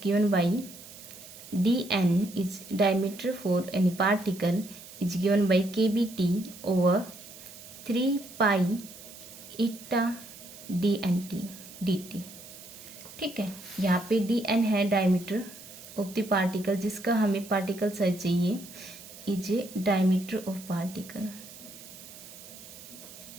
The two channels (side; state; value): right; noise; hiss, 17 dB below the sound